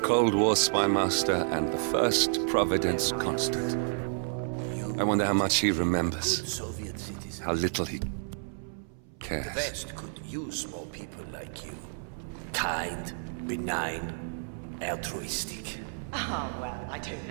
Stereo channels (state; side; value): silent; left; 58 dB below the other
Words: Cold War spy master and the first Providence constant. I wonder how much he remembers. Soviet citizen. How little he The cares. West could use more people like you. Kind, benign, altruistic. Oh, well, I don't